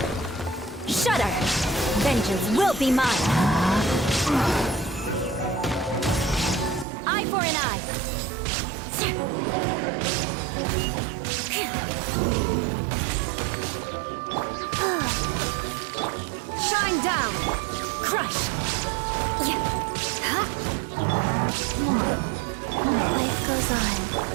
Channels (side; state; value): left; drops out; at 6.9 s